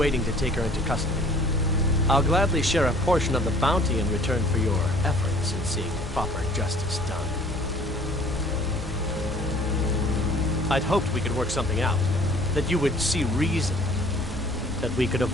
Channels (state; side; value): normal; both; correlation 0.53